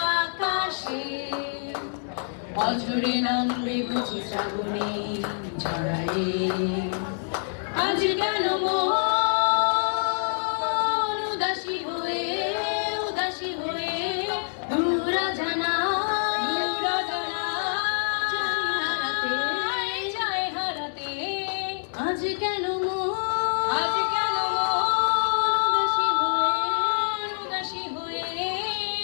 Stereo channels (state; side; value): silent; right; digital silence